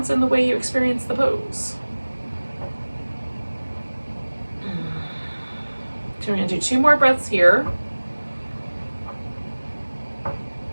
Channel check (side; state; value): both; inverted; correlation -1.00